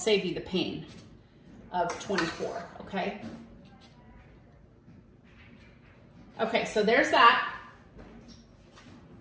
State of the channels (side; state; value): both; identical; correlation 1.00